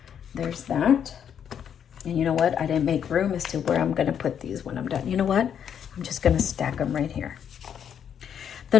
there's that. And you know what? I didn't make room as to where I'm going to put these when I'm done. You know what? I'm just going to stack them right here. The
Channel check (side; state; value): right; quieter; 8.5 dB